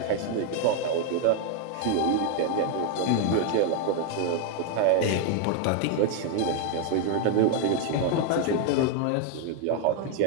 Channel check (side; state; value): both; different; correlation 0.00